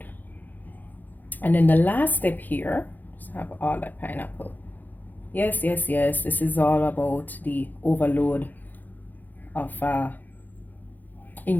And then the last step here, just have all that pineapple. Yes, yes, yes. This is all about the overload of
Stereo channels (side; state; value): right; late; 0.085 ms